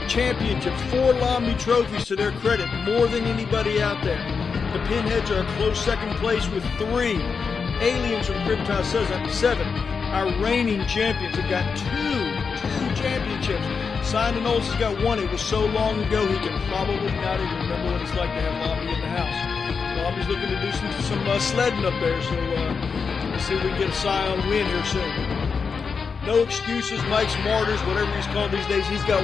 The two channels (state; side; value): quieter; right; 5.5 dB